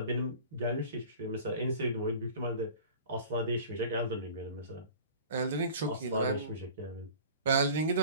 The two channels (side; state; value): both; inverted; correlation -0.42